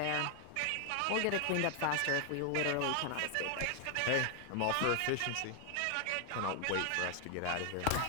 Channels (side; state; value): both; different; correlation 0.00